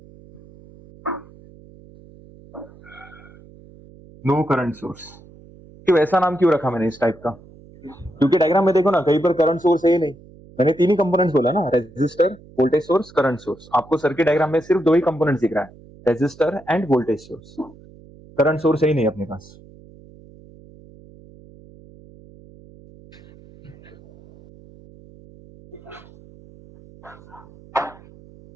No current source, क्यों ऐसा नाम क्यों रखा मैंने इस टाइप का? क्योंकि डायग्राम में देखो ना, कहीं पर करंट सोर्स है ही नहीं। मैंने तीन ही कंपोनेंट्स बोला ना, resistor, voltage source, current source. आपको सर्किट डायग्राम में सिर्फ दो ही कंपोनेंट्स दिख रहा है, resistor and voltage source. Current source है ही नहीं अपने पास।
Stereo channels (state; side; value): noise; right; hum, 23 dB below the sound